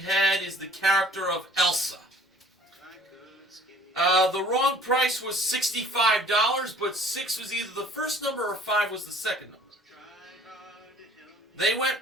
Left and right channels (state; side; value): normal; both; correlation 0.52